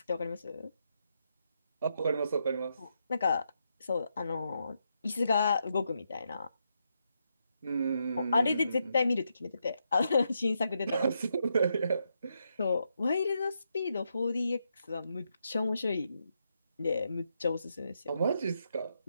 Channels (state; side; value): inverted; both; correlation -0.81